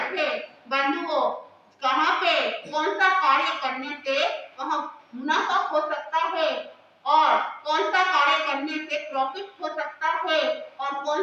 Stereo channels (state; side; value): identical; both; correlation 1.00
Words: है। बंधुओं कहाँ पे कौन सा कार्य करने से वहां मुनाफा हो सकता है और कौन सा कार्य करने से प्रॉफिट हो सकता है और कौन